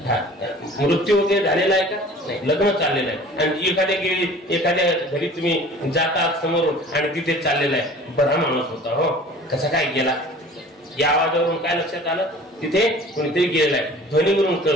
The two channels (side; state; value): both; normal; correlation 0.45